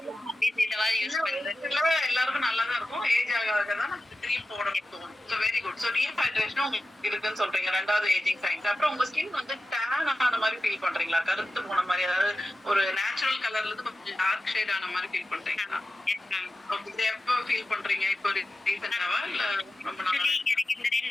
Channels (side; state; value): both; normal; correlation 0.93